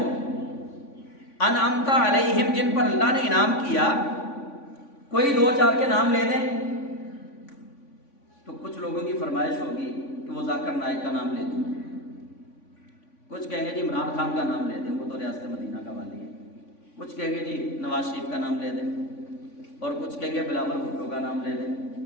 انعمت علیہم، جن پر اللہ نے انعام کیا. کوئی 2-4 کے نام لے دیں تو کچھ لوگوں کی فرمائش ہوگی کہ وہ ذاکر نائک کا نام لے دوں، کچھ کہیں گے جی عمران خان کا نام لے دیں، وہ تو ریاست مدینہ کا والی ہے. کچھ کہیں گے جی نواز شریف کا نام لے دیں، اور کچھ کہیں گے بلاول بھٹو کا نام لے دیں.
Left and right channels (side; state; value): right; late; 3.5 ms